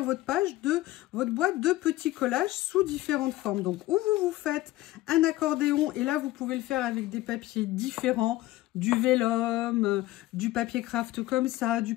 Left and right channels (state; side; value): quieter; right; 17.0 dB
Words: votre page de votre boîte de petits collages sous différentes formes. Donc, où vous faites un accordéon, et là, vous pouvez le faire avec des papiers différents, du vélum, du papier craft comme ça, du